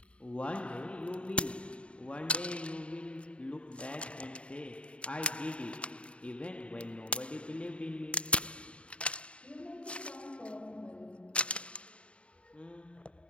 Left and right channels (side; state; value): right; late; 0.060 ms